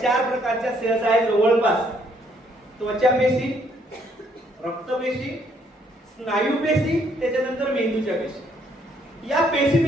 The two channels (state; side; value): normal; both; correlation 0.68